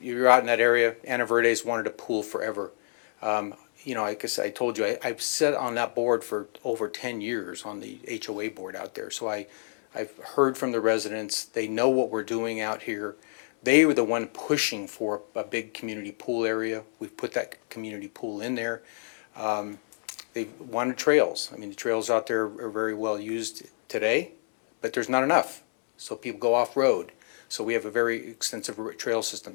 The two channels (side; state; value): right; silent; digital silence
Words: you're out in that area, Ana Verde's wanted a pool forever. You know, I guess I told you, I've sat on that board for over 10 years on the HOA board out there. So I've heard from the residents, they know what we're doing out here. They were the one pushing for a big community pool area. We've put that community pool in there. They wanted trails. I mean, the trails out there are very well used today, but there's not enough. So people go off-road. So we have a very extensive trail system.